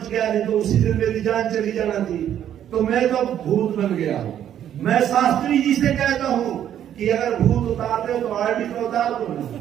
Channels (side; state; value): left; quieter; 10.4 dB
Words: गया, नहीं तो उसी दिन मेरी जान चली जाना थी। तो मैं तो भूत बन गया हूं। मैं शास्त्री जी से कहता हूं कि अगर भूत उतारते तो आरडी को उतार दो,